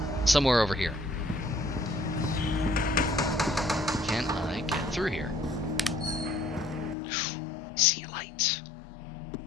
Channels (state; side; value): drops out; right; at 7.0 s